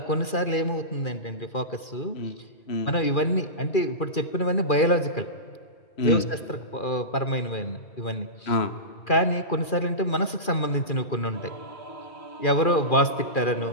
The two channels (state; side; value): late; right; 2.4 ms